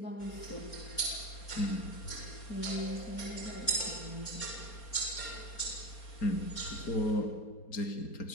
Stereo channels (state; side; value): late; right; 4.3 ms